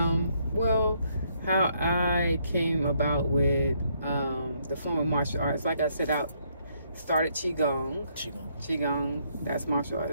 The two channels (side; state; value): both; inverted; correlation -0.72